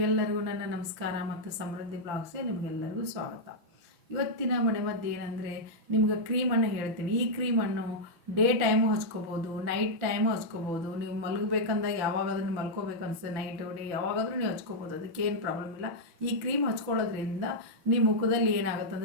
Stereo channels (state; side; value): late; left; 6.1 ms